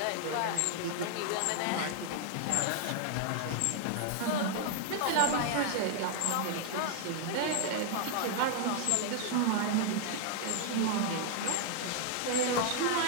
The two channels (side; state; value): both; different; correlation 0.00